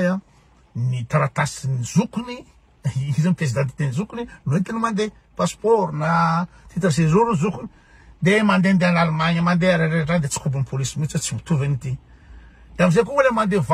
ny taratasy ny zokony izy ny pièce d'identité ny zokony no entina mandeha passeport na titre séjour ny zokony de mandehandeha any Allemagne mandeha rehetrarehetra de tsy kobon'ny polisy mihitsy tsy mitovy an'ity de amizay koa le mandeha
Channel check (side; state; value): both; identical; correlation 1.00